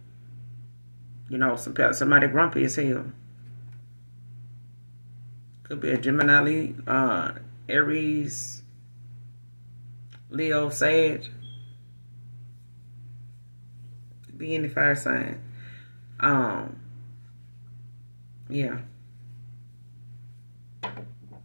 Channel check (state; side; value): inverted; both; correlation -1.00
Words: somebody grumpy as hell. Could be a Gemini, Aries, Leo, Sag. Could be any fire sign. Yeah.